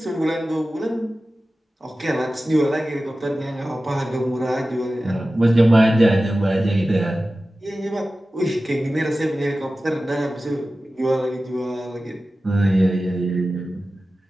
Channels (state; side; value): normal; both; correlation 0.95